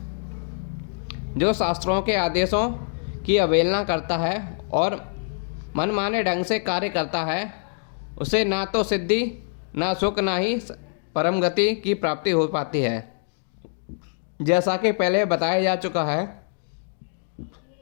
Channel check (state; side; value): silent; right; digital silence